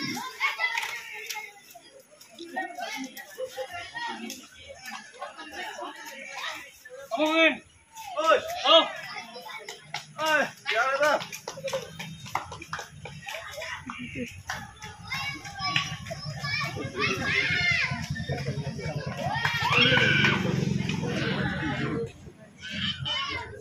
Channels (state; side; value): identical; both; correlation 1.00